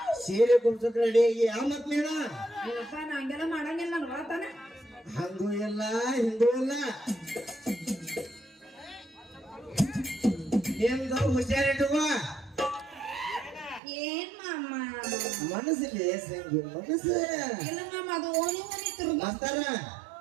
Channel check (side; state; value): left; drops out; at 13.8 s